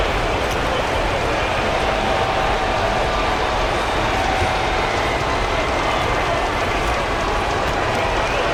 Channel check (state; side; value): identical; both; correlation 1.00